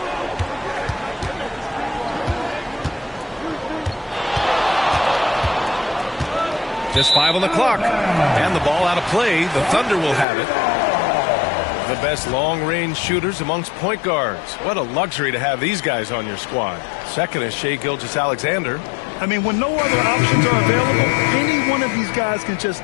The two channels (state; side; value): drops out; right; at 10.2 s